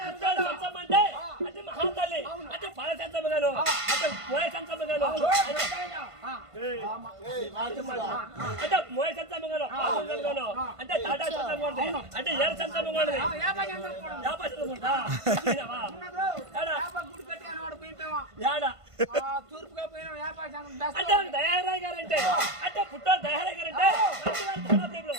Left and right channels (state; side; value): late; left; 1.5 ms